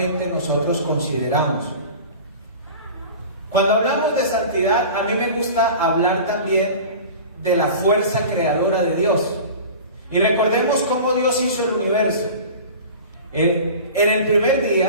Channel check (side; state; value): both; inverted; correlation -0.37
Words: nosotros consideramos. Cuando hablamos de santidad, a mí me gusta hablar también de la fuerza creadora de Dios. Y recordemos cómo Dios hizo el universo. En el primer